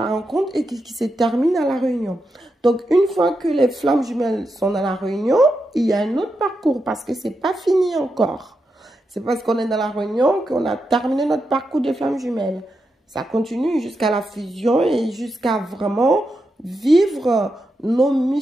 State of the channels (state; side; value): normal; both; correlation 0.86